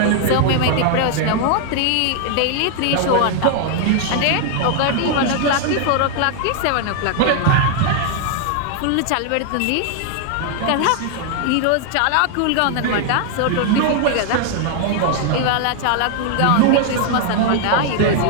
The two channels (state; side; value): different; both; correlation 0.00